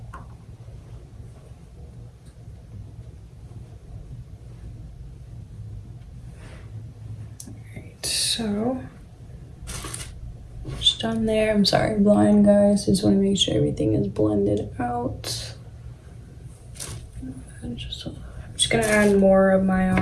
So, just done there. I'm sorry, blind guys. Just want to make sure everything is blended out. I'm just gonna add more of my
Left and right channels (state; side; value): identical; both; correlation 1.00